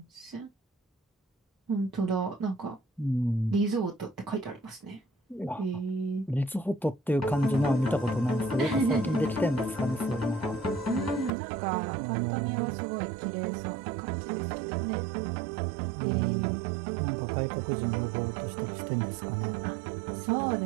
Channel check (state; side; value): drops out; left; at 11.3 s